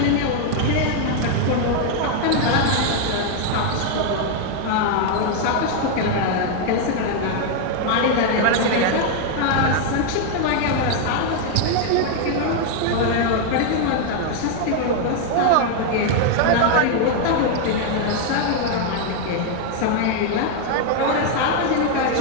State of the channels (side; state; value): both; different; correlation 0.00